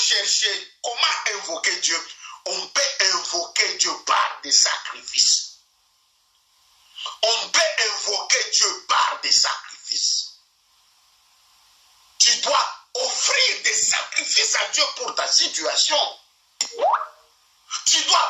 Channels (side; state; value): both; identical; correlation 1.00